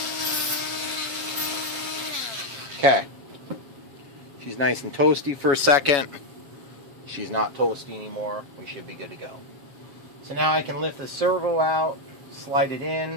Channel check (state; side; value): late; left; 7.4 ms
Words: Okay, she's nice and toasty for a second. She's not toasty anymore. We should be good to go. So now I can lift the servo out, slide it